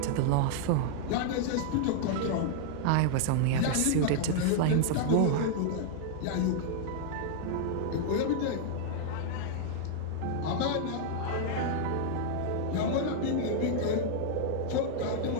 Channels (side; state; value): both; different; correlation -0.01